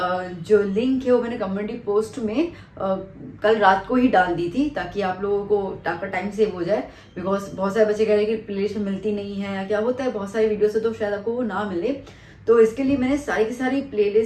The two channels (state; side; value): identical; both; correlation 1.00